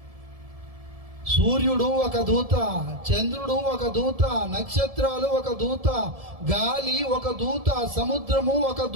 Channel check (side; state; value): left; late; 1.7 ms